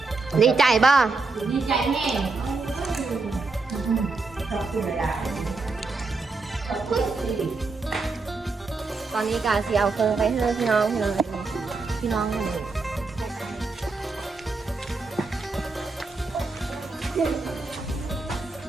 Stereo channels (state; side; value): quieter; left; 3.8 dB